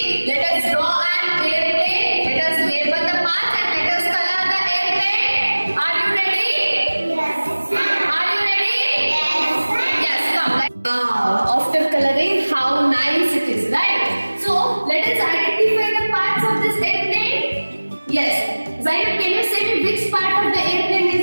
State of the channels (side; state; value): both; inverted; correlation -1.00